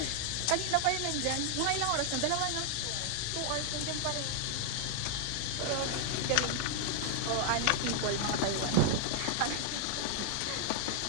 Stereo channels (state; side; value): different; both; correlation 0.00